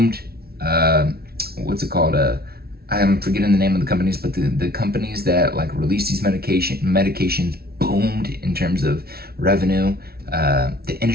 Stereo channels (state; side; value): late; left; 0.45 ms